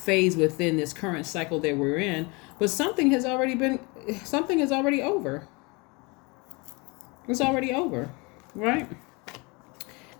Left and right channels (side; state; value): right; quieter; 28.0 dB